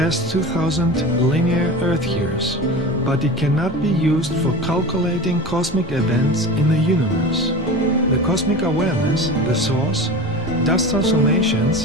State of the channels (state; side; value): normal; both; correlation 0.31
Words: 2000 linear Earth years, but it cannot be used for calculating cosmic events in the universe. The cosmic awareness, the source, does transformations